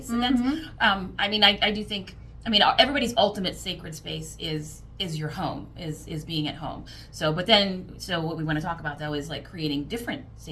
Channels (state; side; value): identical; both; correlation 1.00